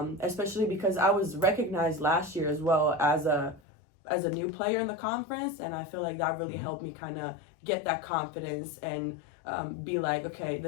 Especially because I was recognized last year as well as a new player in the conference. And I feel like that really helped me kind of get that confidence and be like, okay,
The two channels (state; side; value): drops out; right; at 3.6 s